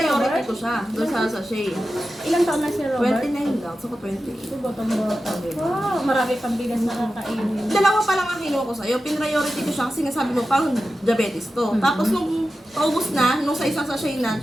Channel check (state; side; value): normal; both; correlation 0.93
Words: Robert? ko siya. Doon sa sachet. Ilang taon na si Robert? 29 lang. So, 28. Botong-bota. Wow, marami pang bigas na kakainin. Dalawa pa lang ang kinuha ko sa'yo. Pin-priority ko siya kasi nga sabi mo, parang diabetes to. Tapos nung paubos na, nung sa isang sachet na,